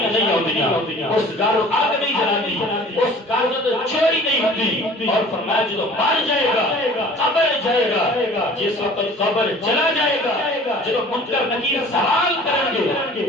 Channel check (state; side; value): normal; both; correlation 0.46